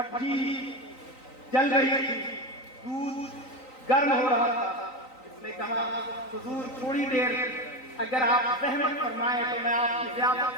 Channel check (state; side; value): late; right; 3.9 ms